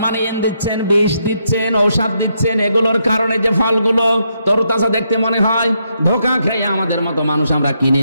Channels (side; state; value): both; inverted; correlation -0.78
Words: দিচ্ছেন, বিষ দিচ্ছেন, ঔষধ দিচ্ছেন, এগুলোর কারণে যে ফলগুলো তরতাজা দেখতে মনে হয়, ধোঁকা খেয়ে আমাদের মতো মানুষ আমরা কিনে